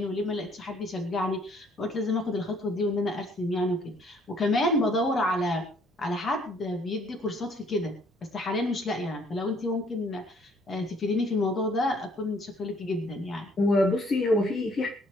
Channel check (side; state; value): both; normal; correlation 0.62